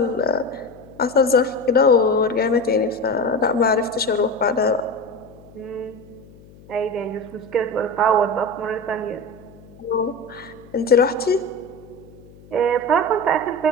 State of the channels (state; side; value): noise; left; hum, 23 dB below the sound